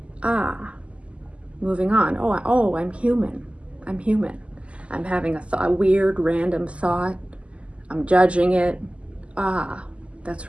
moving on. Oh, I'm human. I'm human. I'm having a weird, random thought. I'm judging it. That's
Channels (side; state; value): left; late; 0.058 ms